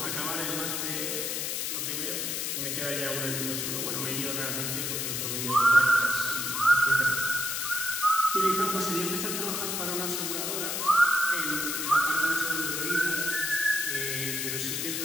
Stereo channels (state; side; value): noise; left; hiss, 1 dB below the sound